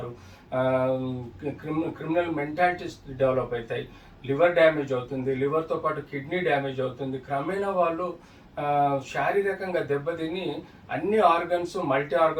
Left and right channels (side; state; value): both; identical; correlation 1.00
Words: క్రిమినల్ మెంటాలిటీస్ డెవలప్ అవుతాయి, లివర్ డ్యామేజ్ అవుతుంది, లివర్తో పాటు కిడ్నీ డ్యామేజ్ అవుతుంది. క్రమేణా వాళ్ళు శారీరకంగా దెబ్బతిని అన్ని ఆర్గన్స్ మల్టీ